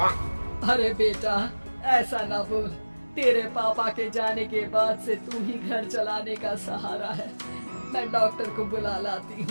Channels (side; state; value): both; inverted; correlation -1.00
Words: अरे बेटा, ऐसा ना बोल। तेरे पापा के जाने के बाद से तू ही घर चलाने का सहारा है। मैं डॉक्टर को बुला लाती